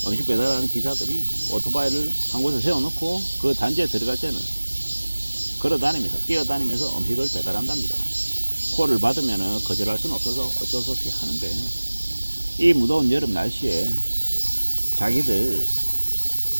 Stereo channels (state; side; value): inverted; both; correlation -1.00